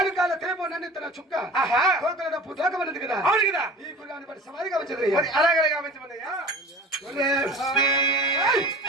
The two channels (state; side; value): normal; both; correlation 0.40